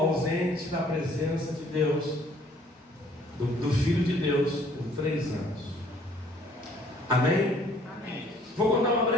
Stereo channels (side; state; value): both; normal; correlation 0.59